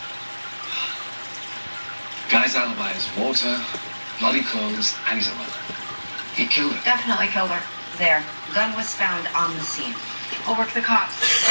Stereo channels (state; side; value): inverted; both; correlation -1.00